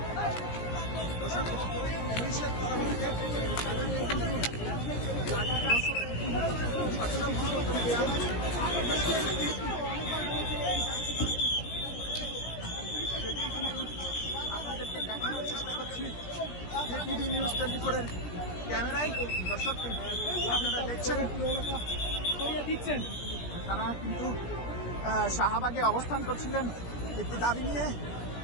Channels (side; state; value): right; late; 17 ms